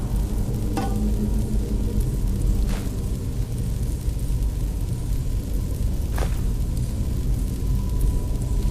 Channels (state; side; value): identical; both; correlation 1.00